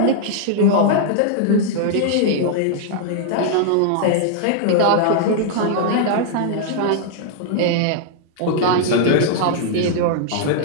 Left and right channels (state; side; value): different; both; correlation -0.01